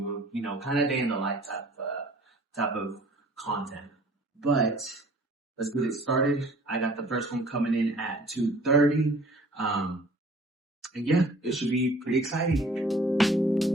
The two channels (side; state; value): both; normal; correlation 0.52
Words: You know, kind of day in the life type of content. But let's get it started. I got the first one coming in at 2:30. And yeah, it should be pretty exciting.